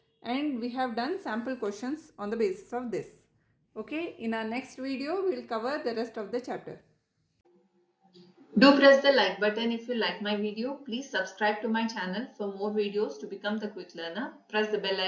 and we have done sample questions on the basis of this. Okay, in our next video we will cover the rest of the chapter. Do press the like button if you like my video. Please subscribe to my channel for more videos to become the quick learner. Press the bell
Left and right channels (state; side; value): identical; both; correlation 1.00